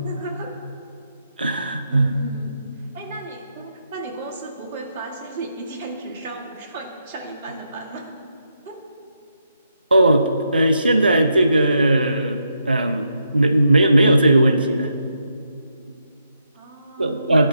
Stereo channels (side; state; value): both; inverted; correlation -0.81